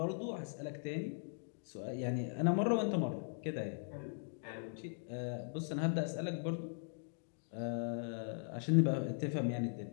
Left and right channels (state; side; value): silent; right; digital silence